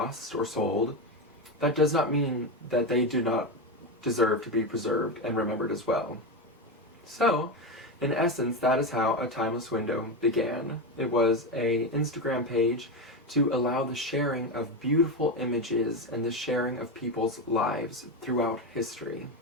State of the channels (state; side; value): normal; both; correlation 0.14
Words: or sold, that does not mean that they do not deserve to be preserved and remembered as well. So, in essence, that is how A Timeless Window began. It was an Instagram page to allow the sharing of beautiful images and the sharing of people's lives throughout history.